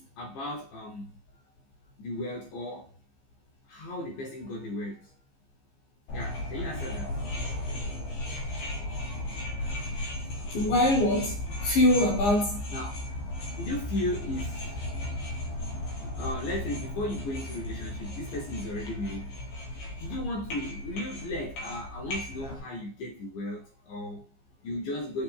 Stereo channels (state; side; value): late; right; 15 ms